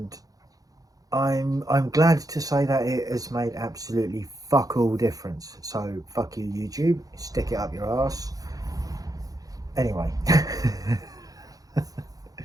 I'm glad to say that it has made absolutely fuck all difference. So fuck you, YouTube. Stick it up your ass. Anyway.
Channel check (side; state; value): left; late; 0.17 ms